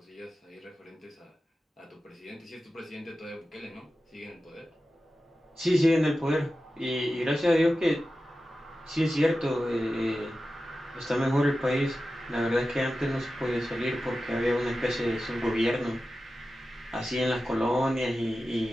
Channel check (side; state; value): both; normal; correlation 0.93